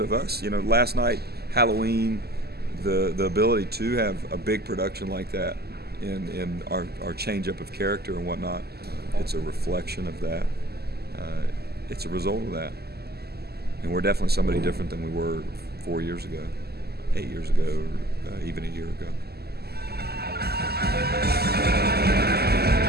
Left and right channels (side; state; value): left; late; 0.46 ms